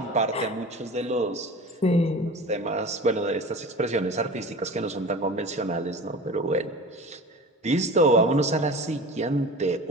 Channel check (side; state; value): both; normal; correlation 0.35